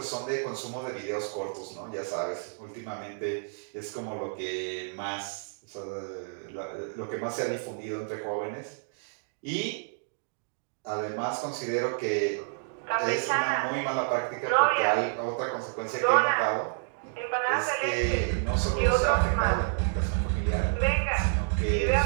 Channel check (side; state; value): left; silent; digital silence